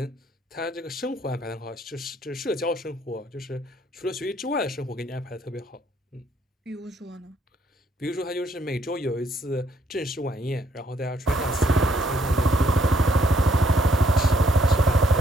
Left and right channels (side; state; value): both; normal; correlation 0.70